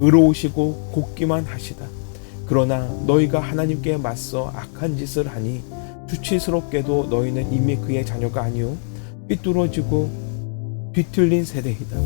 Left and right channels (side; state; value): right; silent; digital silence